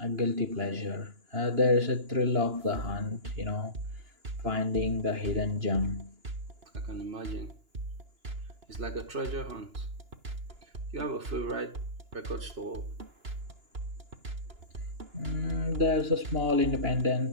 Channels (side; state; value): left; late; 2.9 ms